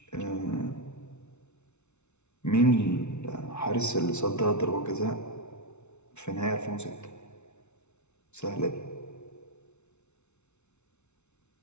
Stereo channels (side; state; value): right; late; 0.82 ms